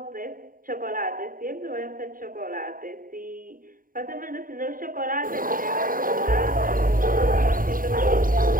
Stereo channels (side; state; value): left; late; 0.41 ms